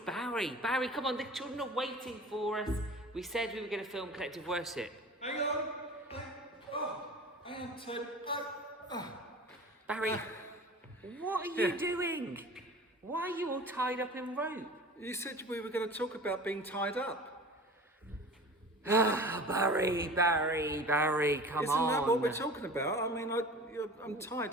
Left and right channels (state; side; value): normal; both; correlation 0.38